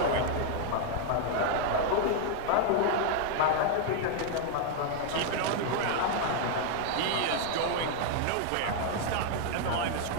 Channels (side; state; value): both; different; correlation 0.00